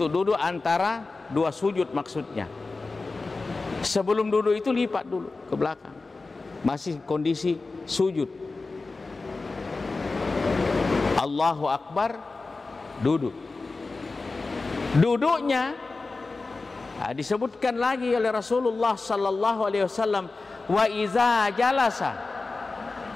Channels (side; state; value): right; quieter; 3.7 dB